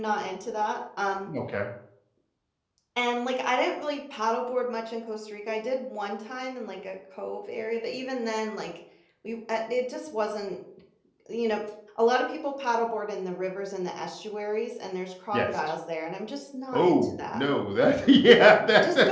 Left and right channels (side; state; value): both; identical; correlation 1.00